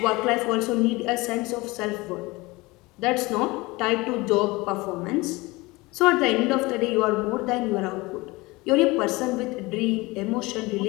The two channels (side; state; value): right; quieter; 22.6 dB